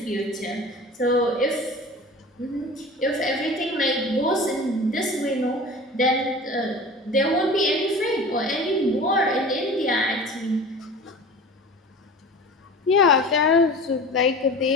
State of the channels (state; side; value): normal; both; correlation 0.37